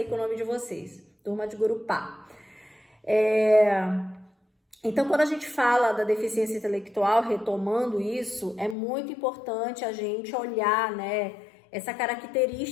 com o nome de vocês, turma de Gurupá. Então, quando a gente fala da deficiência intelectual, retomando isso, é muito importante a gente olhar, né, essa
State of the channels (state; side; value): drops out; right; at 8.8 s